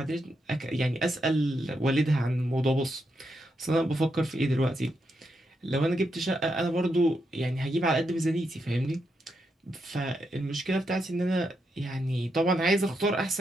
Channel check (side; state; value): both; normal; correlation 0.82